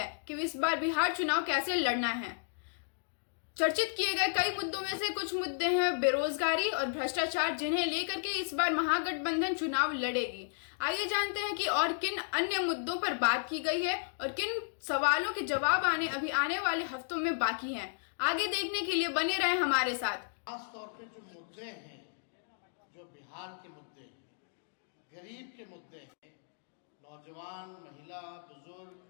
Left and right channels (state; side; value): silent; right; digital silence